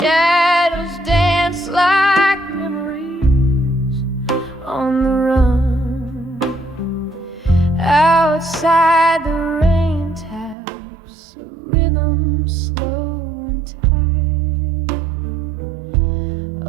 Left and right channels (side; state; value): left; drops out; at 10.6 s